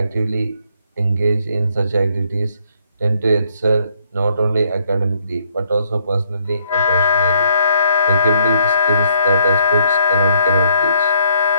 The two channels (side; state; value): both; inverted; correlation -0.69